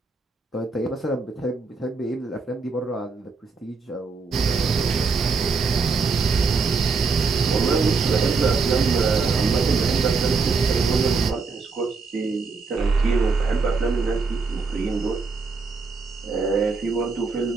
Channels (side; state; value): left; quieter; 4.5 dB